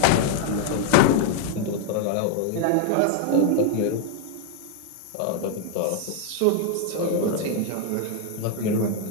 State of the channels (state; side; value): different; both; correlation 0.01